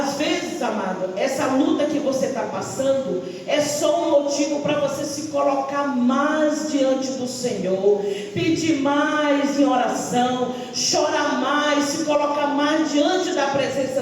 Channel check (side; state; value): both; identical; correlation 1.00